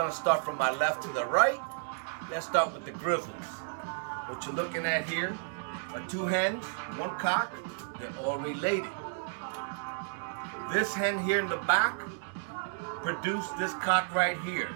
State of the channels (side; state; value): left; silent; digital silence